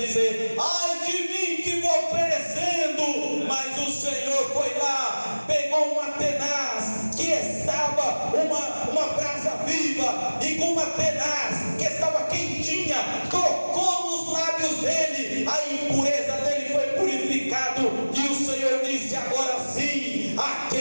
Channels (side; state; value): both; inverted; correlation -1.00